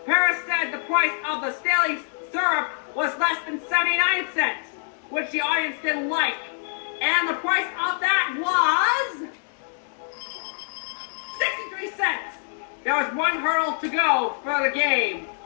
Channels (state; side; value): silent; right; digital silence